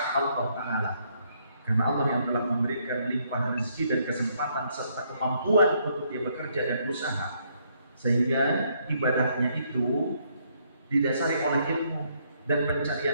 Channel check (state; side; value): inverted; both; correlation -0.71